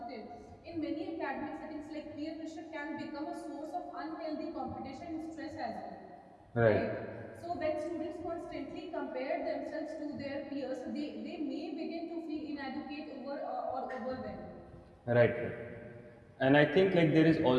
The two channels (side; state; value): both; identical; correlation 1.00